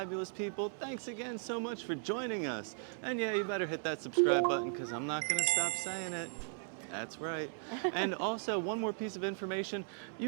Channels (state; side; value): silent; left; 53 dB below the other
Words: people. Thanks again so much for joining us. And yeah, you better hit that subscribe button because I'm not gonna stop saying it. That's right. And also, one more piece of information,